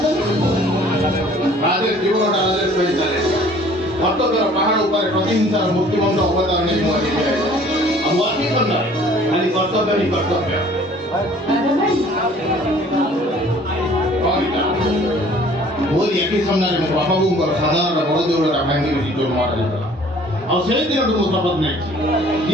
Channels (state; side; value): normal; both; correlation 0.53